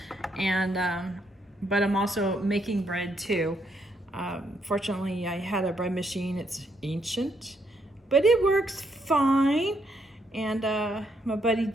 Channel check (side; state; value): both; normal; correlation 0.75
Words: And, but I'm also making bread too. Fortunately, I had a bread machine. It's ancient, but it works fine. And my buddy